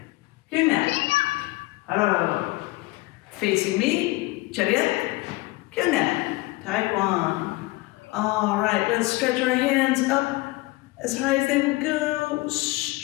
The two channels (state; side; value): quieter; right; 21.6 dB